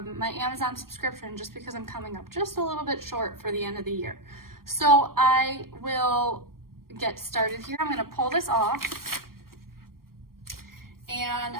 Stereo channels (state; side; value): late; left; 0.93 ms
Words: Amazon subscription, just because I'm coming up just a little bit short for the end of the year. So I will get started here. I'm gonna pull this off and